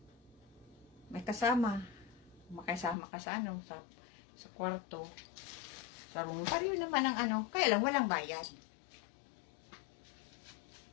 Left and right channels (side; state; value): right; drops out; at 3.0 s